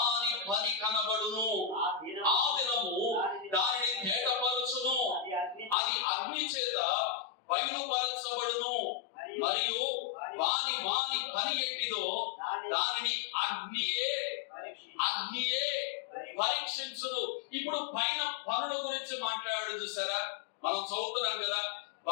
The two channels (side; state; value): right; drops out; at 5.8 s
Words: పని కనబడును. బయలుపరచబడును, మరియు వాని వాని పని ఎట్టిదో దానిని అగ్నియే పరీక్షించును. ఇప్పుడు పైన పనుల గురించి మాట్లాడు చూసారా, మనం చదువుతున్నాం కదా,